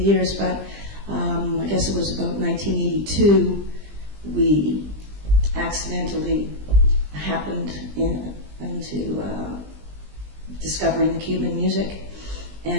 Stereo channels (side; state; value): left; late; 20 ms